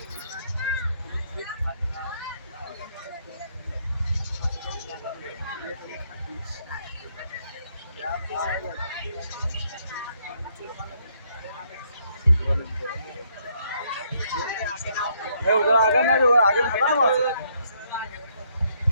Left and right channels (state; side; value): inverted; both; correlation -0.70